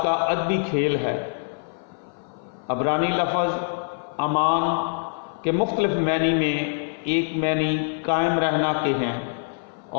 کا ادبی کھیل ہے۔ عبرانی لفظ امان کے مختلف معنی میں ایک معنی قائم رہنا کے ہیں،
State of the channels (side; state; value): right; silent; 57 dB below the other